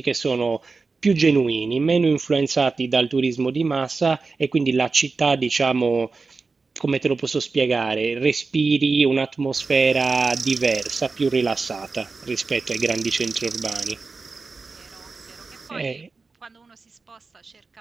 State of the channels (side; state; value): left; quieter; 4.2 dB